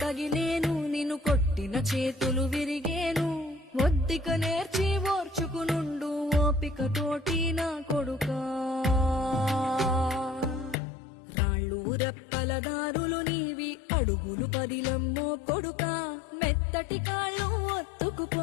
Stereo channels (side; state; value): right; drops out; at 10.8 s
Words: తగిలేను, నిన్ను కొట్టిన చేతులు విరిగేను. ఒద్దిక నేర్చి ఓర్చుకునుండు ఓపిక తోటి నా కొడుకా. రాళ్ళు రెప్పల దారులు నీవి, అడుగులు పదిలమ్మో కొడుకా. మెత్తటి కాళ్ళు